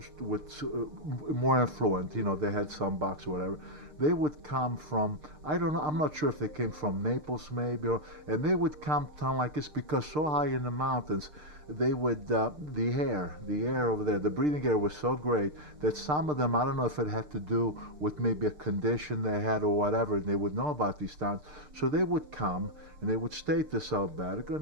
with more affluent, you know, they had some bucks or whatever, they would come from, I don't know, I'm not sure if they came from Naples maybe, and they would come down like this because so high in the mountains, they would, the air over there, the breathing air was so great that some of them, I don't know if it had to do with maybe a condition they had or whatever, and they would know about these towns. So they would come and they would stay at this albergo,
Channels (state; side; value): late; left; 6.6 ms